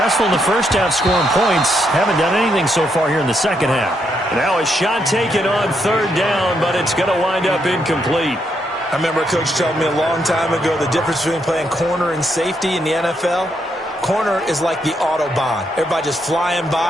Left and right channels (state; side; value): normal; both; correlation 0.78